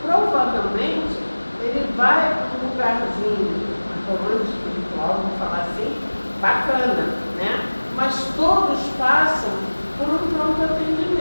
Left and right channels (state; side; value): inverted; both; correlation -1.00